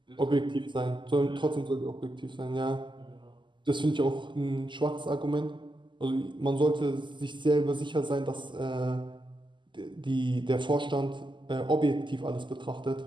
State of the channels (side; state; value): left; late; 0.23 ms